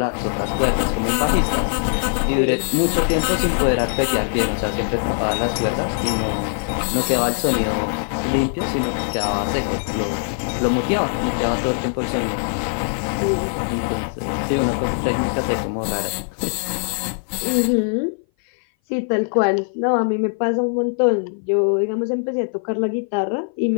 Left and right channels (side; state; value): right; silent; 58 dB below the other